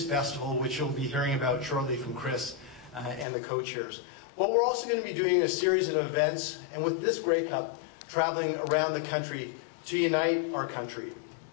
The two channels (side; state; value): right; drops out; at 3.2 s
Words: festival, which you'll be hearing about shortly from Chris and the co-chairs. But we're also going to be doing a series of events, and with this Grey Cup, traveling around the country to unite our country.